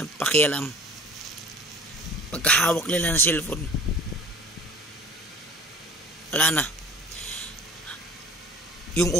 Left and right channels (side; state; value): both; normal; correlation 0.47